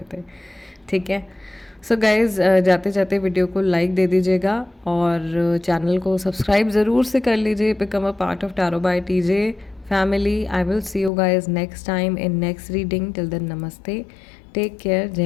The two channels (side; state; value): right; drops out; at 11.1 s